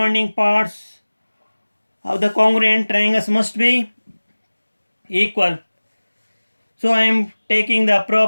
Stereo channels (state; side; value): inverted; both; correlation -1.00